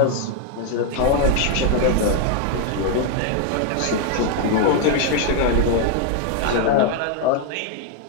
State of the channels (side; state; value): both; different; correlation 0.01